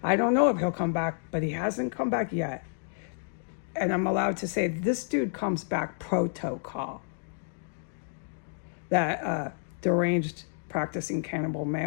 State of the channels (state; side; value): silent; right; digital silence